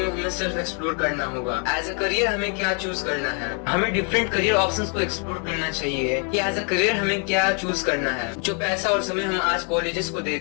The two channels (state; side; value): quieter; right; 38.9 dB